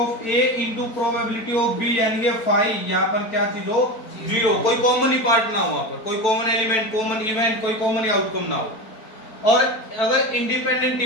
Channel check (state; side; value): late; right; 4.5 ms